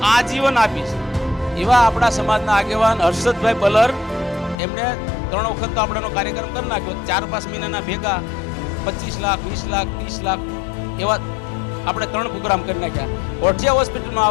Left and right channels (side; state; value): right; drops out; at 4.5 s